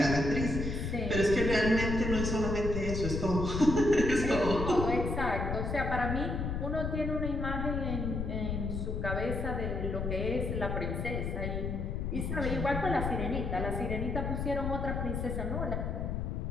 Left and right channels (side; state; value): left; noise; rumble, 2 dB below the sound